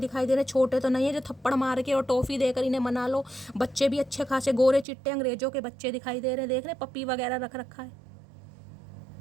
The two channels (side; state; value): left; drops out; at 4.9 s